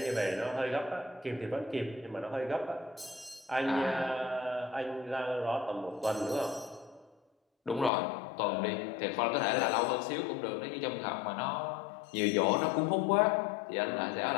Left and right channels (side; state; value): right; drops out; at 7.9 s